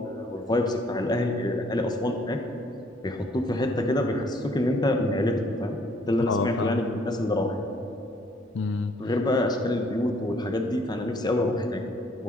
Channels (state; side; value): normal; both; correlation 0.63